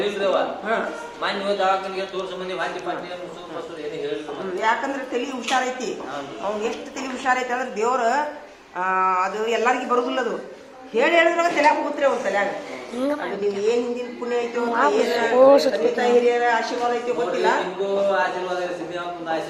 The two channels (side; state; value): both; identical; correlation 1.00